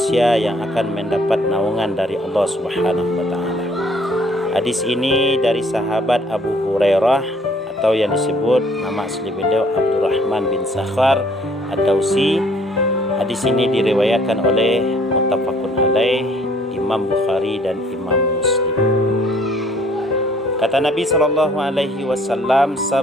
yang akan mendapat naungan dari Allah Subhanahu wa taala. Hadis ini dari sahabat Abu Hurairah atau yang disebut nama asli beliau Abdurrahman bin Sakhar Ad-Dausi. Hadis ini diriwayatkan oleh muttafaqun alaih Imam Bukhari dan Imam Muslim. Kata Nabi sallallahu alaihi wasallam,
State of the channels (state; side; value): normal; both; correlation 0.60